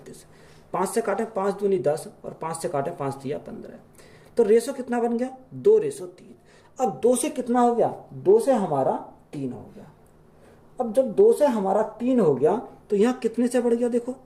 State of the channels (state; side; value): identical; both; correlation 1.00